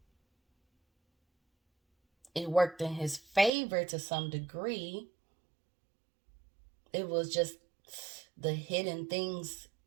it worked in his favor to some degree. It was just the hidden things,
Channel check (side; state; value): left; drops out; at 3.5 s